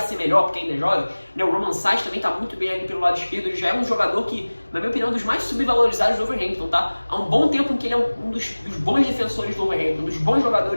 ser melhor porque ainda é jovem. O Romain Saiz também está muito bem ali pelo lado esquerdo. Ele já é um jogador que, na minha opinião, é um dos mais subvalorizados do Wolverhampton, tá? Há um bom tempo em que ele é um dos bons defensores do Wolverhampton, um dos bons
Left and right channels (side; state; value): both; inverted; correlation -1.00